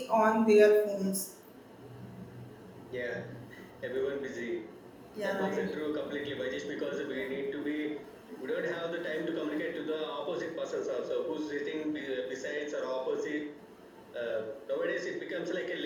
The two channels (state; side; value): identical; both; correlation 1.00